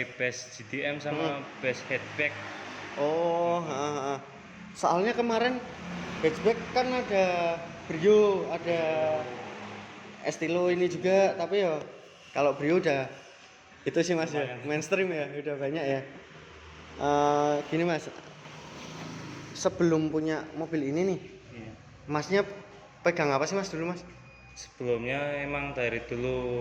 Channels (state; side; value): identical; both; correlation 1.00